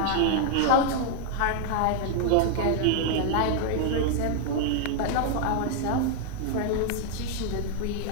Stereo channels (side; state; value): both; different; correlation 0.00